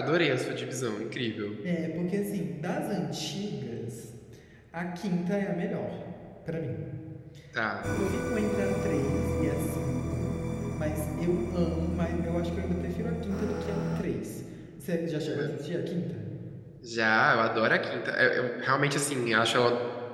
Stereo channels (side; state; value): both; identical; correlation 1.00